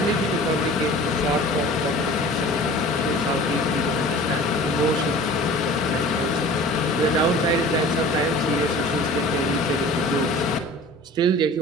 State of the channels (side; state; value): both; normal; correlation 0.43